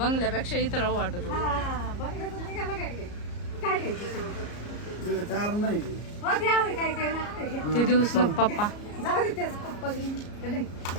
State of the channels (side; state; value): right; late; 34 ms